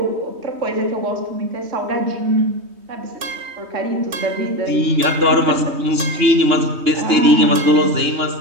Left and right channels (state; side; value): late; left; 3.2 ms